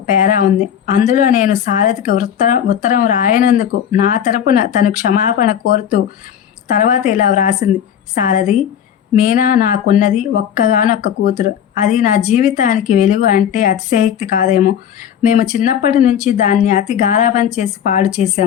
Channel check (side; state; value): right; quieter; 9.2 dB